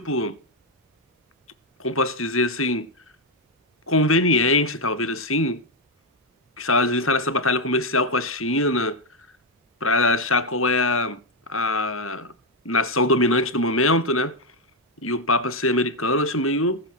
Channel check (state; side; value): normal; both; correlation 0.03